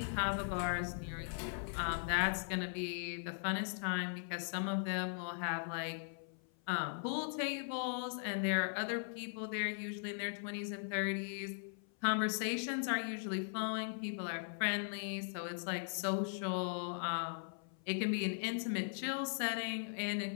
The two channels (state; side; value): silent; right; 52 dB below the other